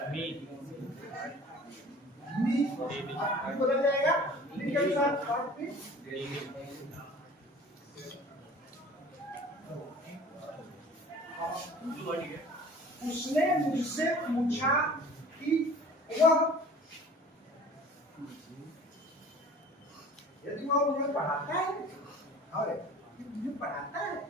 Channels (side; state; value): both; normal; correlation 0.45